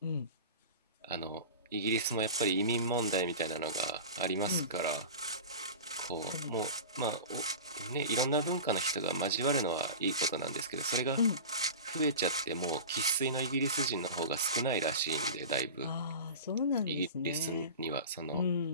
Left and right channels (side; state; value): both; inverted; correlation -0.32